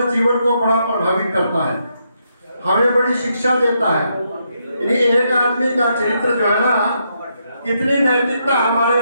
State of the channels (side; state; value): both; inverted; correlation -0.79